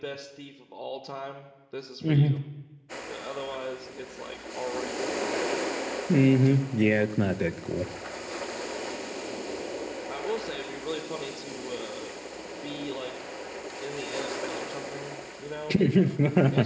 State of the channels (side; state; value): both; identical; correlation 1.00